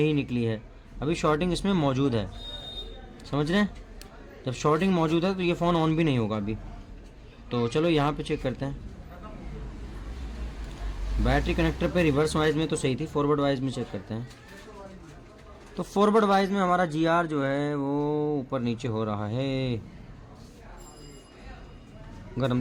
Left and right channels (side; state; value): both; identical; correlation 1.00